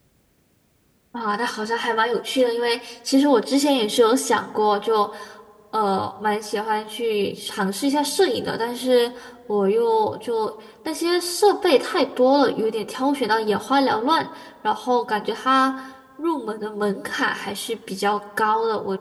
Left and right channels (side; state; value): both; identical; correlation 1.00